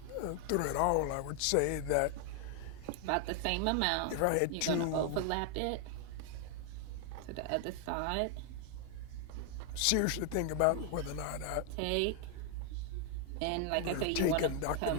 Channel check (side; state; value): both; different; correlation 0.00